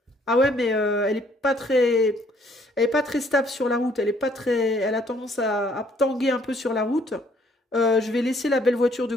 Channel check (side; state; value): both; normal; correlation 0.64